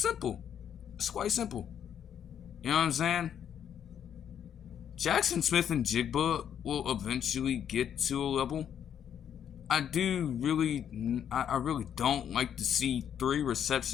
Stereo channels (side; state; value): right; quieter; 9.0 dB